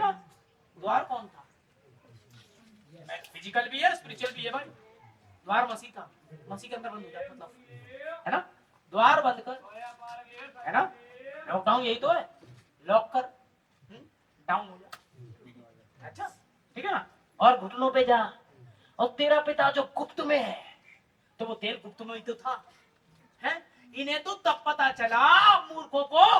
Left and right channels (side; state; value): both; identical; correlation 1.00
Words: द्वार कौन था? फिजिकल भी है, स्पिरिचुअल भी है भाई। द्वार मसीह था, मसीह के अंदर बंद हो जाए मतलब, है ना? द्वार बंद कर, है ना? लॉकडाउन यही तो है, लॉक कर, डाउन हो जा। अच्छा ठीक है ना? और घुटनों पे जा, और तेरा पिता जो गुप्त में है, तो वो तेल गुप्त में ही तो था, है? इन्हें तो तब पता चला मूर्खों को